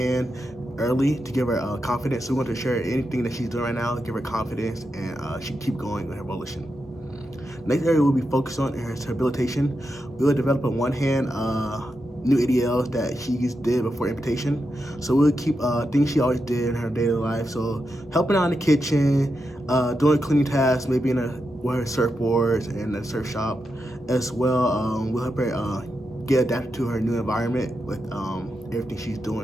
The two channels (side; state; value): both; normal; correlation 0.87